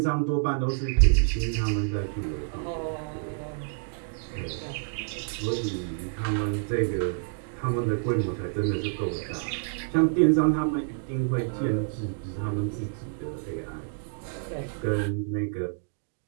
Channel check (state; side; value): silent; left; digital silence